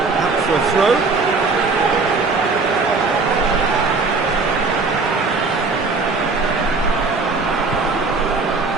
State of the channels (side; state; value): left; quieter; 4.1 dB